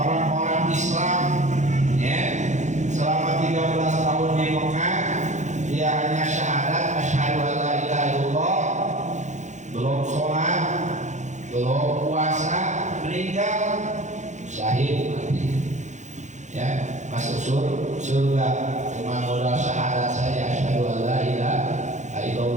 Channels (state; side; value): late; left; 0.35 ms